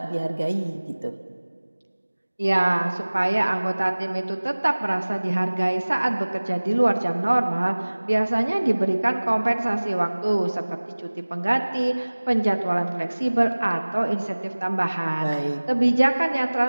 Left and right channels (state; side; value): inverted; both; correlation -1.00